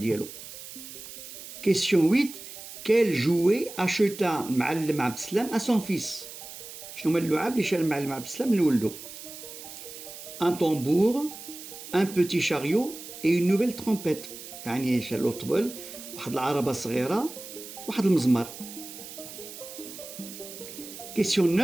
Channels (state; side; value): noise; right; hiss, 13 dB below the sound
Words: Question 8: quel jouet acheta المعلم عبد السلام à son fils؟ شنو هما اللعاب اللي شرا المعلم عبد السلام لولدو؟ un tambour, un petit chariot et une nouvelle trompette. يعني شرا له طبل، واحد العربة صغيرة، واحد المزمار. Question